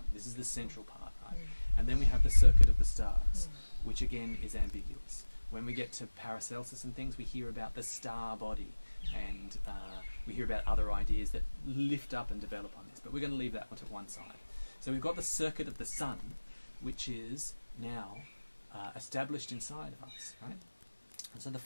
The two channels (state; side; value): inverted; both; correlation -1.00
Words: This is the central part, right? And then we have the circuit of the stars, which again is ambiguous. When we get to Paracelsus and things, we hear about the star body, and we hear about other ideas that lift up and develop on this. But we're going to leave that one to one side. So we've got the circuit of the sun, which is now established inside of us, right? And so the